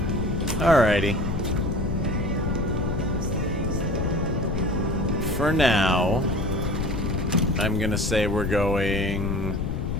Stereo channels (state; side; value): noise; left; rumble, 1 dB below the sound